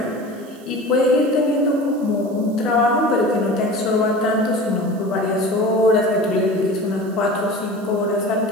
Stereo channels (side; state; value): right; noise; hiss, 26 dB below the sound